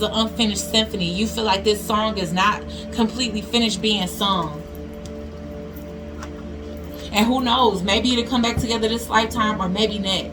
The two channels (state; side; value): identical; both; correlation 1.00